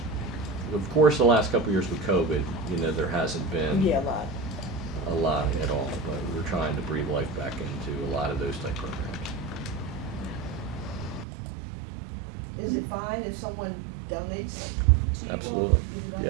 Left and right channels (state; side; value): drops out; left; at 11.2 s